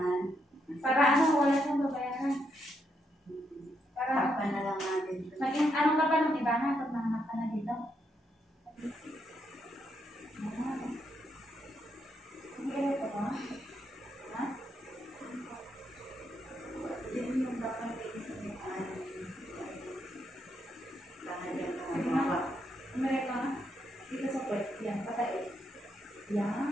Para ano, wala siyang babayaran. Para Takpan na lang natin. maging anong ka pa ng iba na pag nanganak ka na dito? Hindi ka ito ba? Ha? Yan yung dapat iisipin. Lalagyan ka ng mga. Umirik ka na? Dito sa puwet. Yan, patay.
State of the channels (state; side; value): normal; both; correlation 0.79